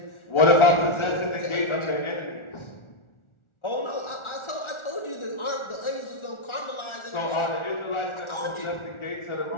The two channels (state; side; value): late; right; 1.4 ms